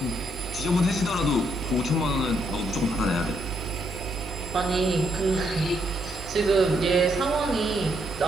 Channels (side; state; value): both; normal; correlation 0.75